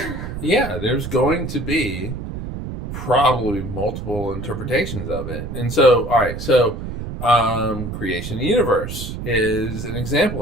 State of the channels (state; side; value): noise; right; rumble, 7 dB below the sound